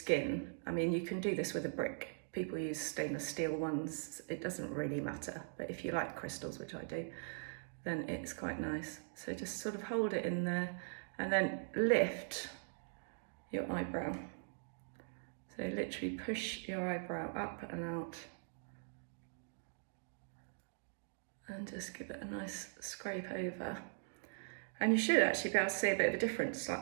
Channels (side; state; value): left; silent; digital silence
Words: I mean, you can do this with a brick. People use stainless steel ones. It doesn't really matter, but if you like crystals, which I do, then it's quite nice. So just sort of hold it in there and then lift your eyebrow. So literally push your eyebrow up and out, and just give it a nice scrape over. And you should actually be able to see a bit of a difference,